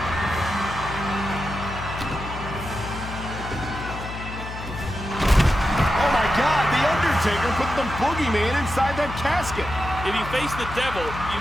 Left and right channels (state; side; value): noise; left; hum, 10 dB below the sound